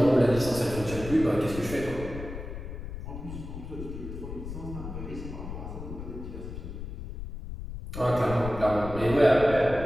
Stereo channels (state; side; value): noise; left; rumble, 9 dB below the sound